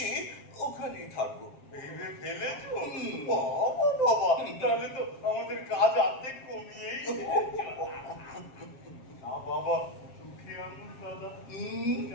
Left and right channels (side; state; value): right; late; 7.4 ms